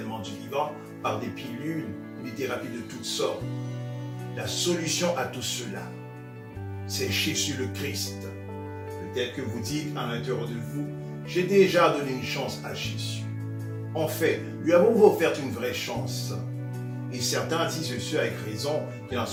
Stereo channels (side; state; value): both; identical; correlation 1.00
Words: du vivant par des pilules ou des thérapies de toutes sortes. La solution à tout cela, c'est Jésus le Christ. Peut-être que vous dites à l'intérieur de vous, j'ai déjà donné une chance à Jésus. En fait, lui avons-vous offert une vraie chance? Et certains disent ceux avec raison, qu'il en